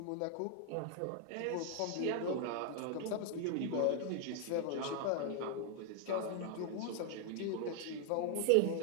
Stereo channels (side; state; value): both; different; correlation 0.00